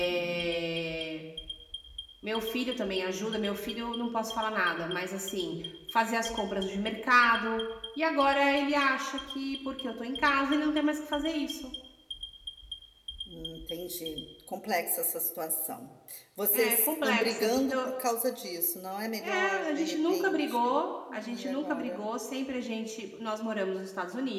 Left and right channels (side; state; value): both; identical; correlation 1.00